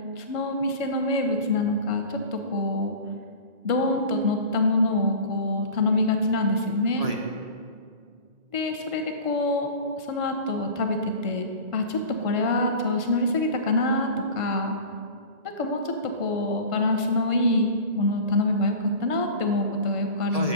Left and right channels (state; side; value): late; left; 1.5 ms